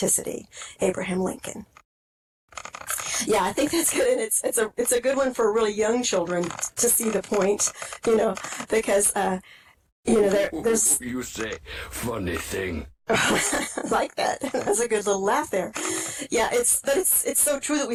Abraham Lincoln. Yeah, I think that's good, and it's a good one for really young children to see the point, because there's. You say funny thing. Like that. That's a good little laugh there. Yeah, it's so true that we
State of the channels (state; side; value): identical; both; correlation 1.00